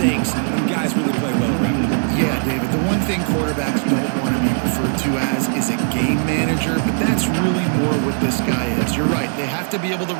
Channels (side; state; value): left; silent; 66 dB below the other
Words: and guys really play well around him. Yeah, David, the one thing quarterbacks don't want to be referred to as is a game manager, but that's really more what this guy is. You're right. They have to be able to